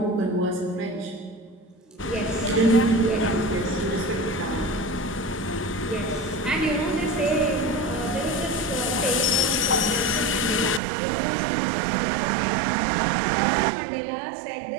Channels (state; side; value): drops out; left; at 10.8 s